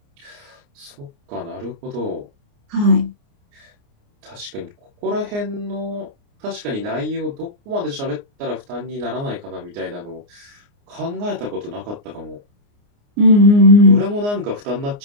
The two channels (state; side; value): late; left; 29 ms